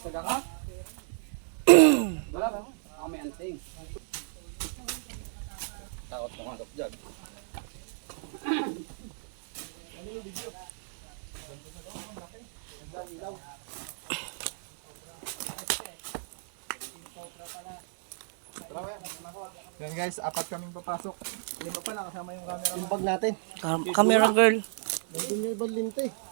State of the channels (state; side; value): silent; left; digital silence